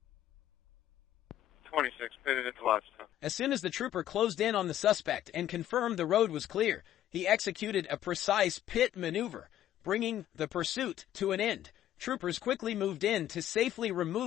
26, pitted at the livestock. As soon as the trooper closed in on the suspect and confirmed the road was clear, he executed a precise pit maneuver, bringing the pursuit to an end. Troopers quickly moved in to safely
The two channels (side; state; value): right; quieter; 12.2 dB